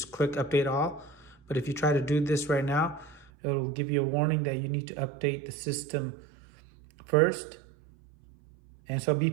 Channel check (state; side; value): drops out; left; at 3.3 s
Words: click update all. But if you try to do this right now, it'll give you a warning that you need to update the system first. And so be